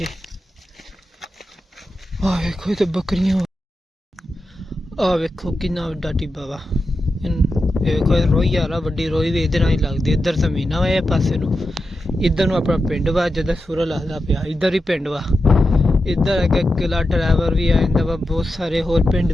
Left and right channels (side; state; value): both; normal; correlation 0.90